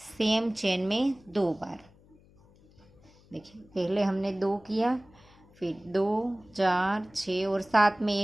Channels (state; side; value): noise; left; hum, 28 dB below the sound